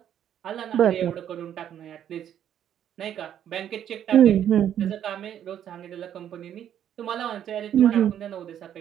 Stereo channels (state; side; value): quieter; left; 10.1 dB